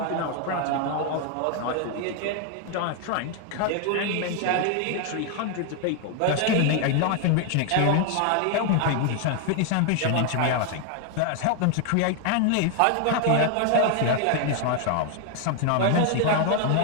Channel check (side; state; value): both; different; correlation 0.01